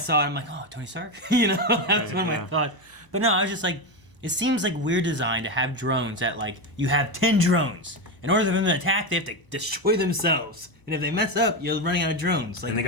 it, I'm like, oh, Tony Stark? That was one of my Yeah. thoughts. But no, I was just like, it seems like weird design to have drones that, like, you have 10 drones. In order for them to attack, they have to destroy themselves. And if they mess up, you're running out of drones. Like, and they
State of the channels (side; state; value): right; late; 1.0 ms